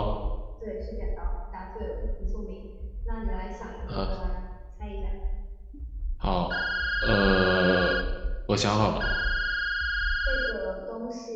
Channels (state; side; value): identical; both; correlation 1.00